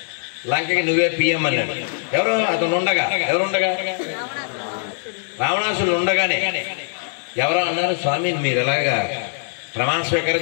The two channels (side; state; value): right; silent; 56 dB below the other